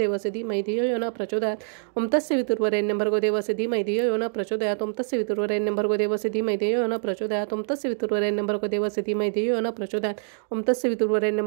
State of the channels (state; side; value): silent; left; digital silence